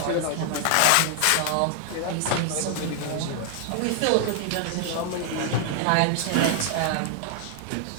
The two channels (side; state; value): both; different; correlation 0.00